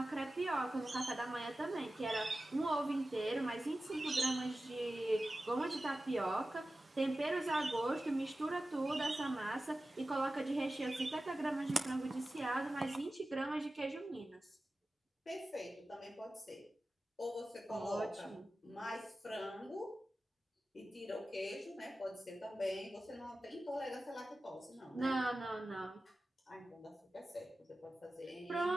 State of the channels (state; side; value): normal; both; correlation 0.95